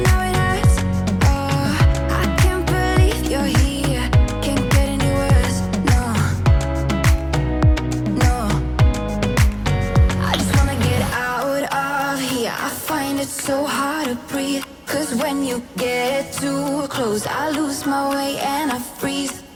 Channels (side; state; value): both; identical; correlation 1.00